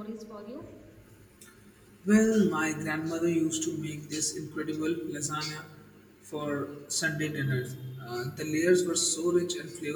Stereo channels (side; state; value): both; identical; correlation 1.00